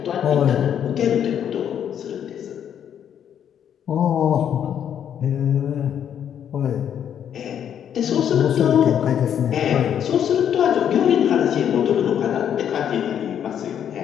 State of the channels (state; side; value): quieter; right; 9.1 dB